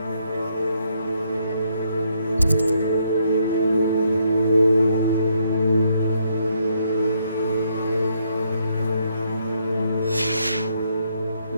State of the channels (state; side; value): inverted; both; correlation -0.74